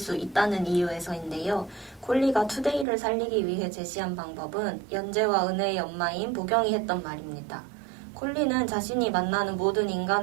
있다는 이유에서인데요. 콜리가 투데이를 살리기 위해 제시한 방법은 연재와 은혜의 엄마인 보경이 했던 말입니다. 콜리는 자신이 만나는 모든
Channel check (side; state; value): left; drops out; at 2.9 s